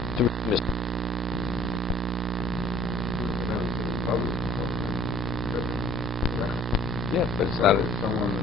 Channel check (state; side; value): normal; both; correlation 0.54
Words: to redeem his son. Yeah, but it's not... Someone